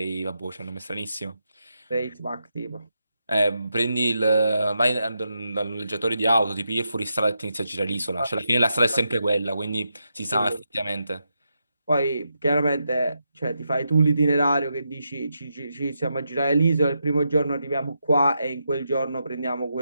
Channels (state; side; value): inverted; both; correlation -0.84